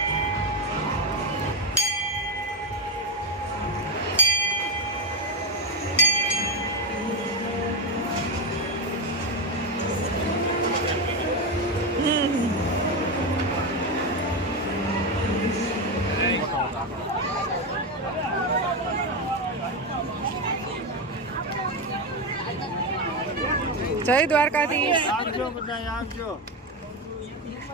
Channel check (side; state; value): both; normal; correlation 0.12